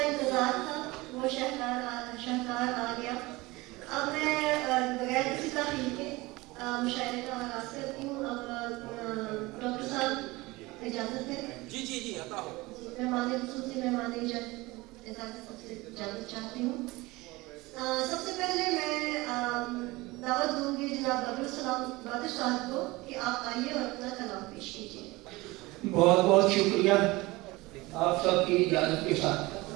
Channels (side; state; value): left; quieter; 21.5 dB